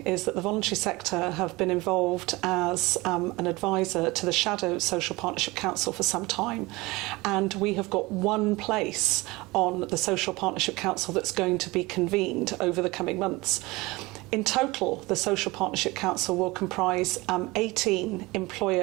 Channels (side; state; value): left; quieter; 22.1 dB